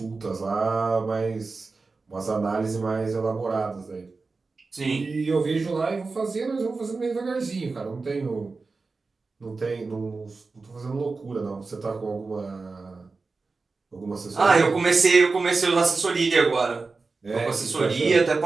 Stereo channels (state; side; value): quieter; left; 4.0 dB